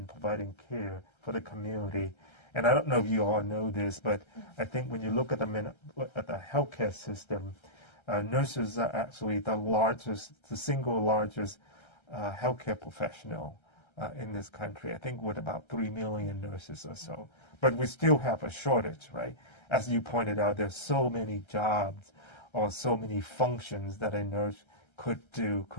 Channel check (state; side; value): late; right; 1.3 ms